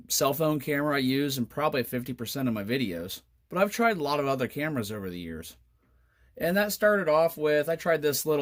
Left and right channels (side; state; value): both; identical; correlation 1.00